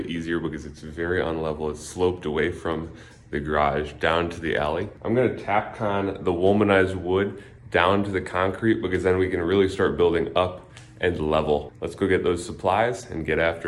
easier because it's very unlevel. It's sloped away from the garage down to the alley. I'm gonna Tapcon the womanized wood down to the concrete because then we can really start building up and level. Let's go get those supplies and get after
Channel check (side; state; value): both; identical; correlation 1.00